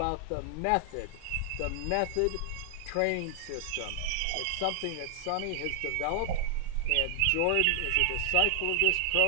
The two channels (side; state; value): both; different; correlation 0.00